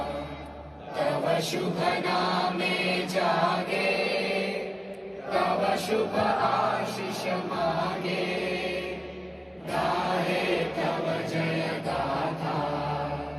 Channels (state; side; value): identical; both; correlation 1.00